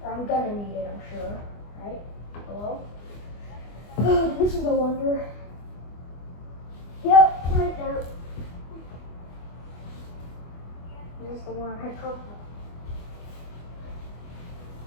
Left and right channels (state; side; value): late; right; 24 ms